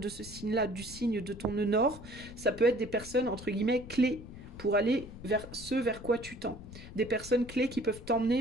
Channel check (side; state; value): left; noise; rumble, 14 dB below the sound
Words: ce signe-là, du signe de ton nœud nord, ça peut être des personnes, entre guillemets, clés pour aller vers ce vers quoi tu tends. Des personnes clés qui peuvent